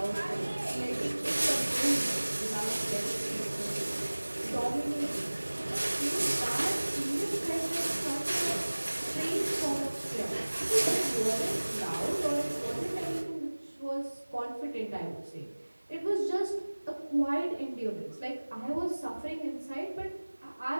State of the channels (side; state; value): both; inverted; correlation -1.00